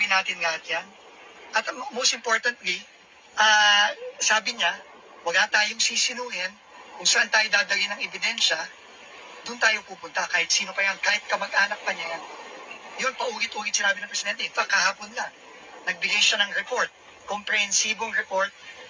natin lahat yan. At most importantly, sabi niya, wala tayong sisinuhin kung saan tayo dadali ng ebidensya, doon tayo pupunta, kahit sino pa yan, kahit kamag-anak pa niya yan. Yun, paulit-ulit sinabi ng Presidente. In fact, kahapon lang, nagbigay siya ng report, komprehensibong report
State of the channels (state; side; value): identical; both; correlation 1.00